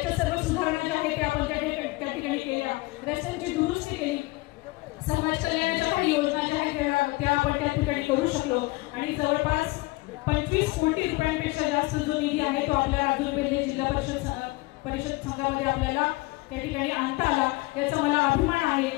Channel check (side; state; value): right; quieter; 22.2 dB